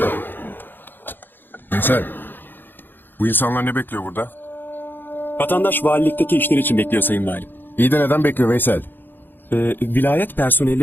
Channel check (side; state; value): right; late; 0.095 ms